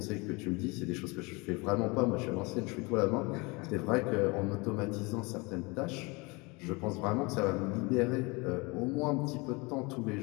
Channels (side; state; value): right; quieter; 26.7 dB